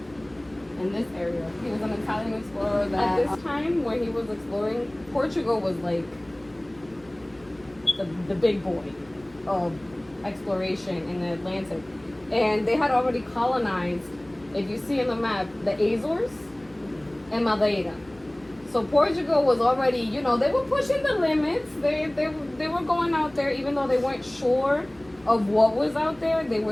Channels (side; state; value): left; noise; hum, 27 dB below the sound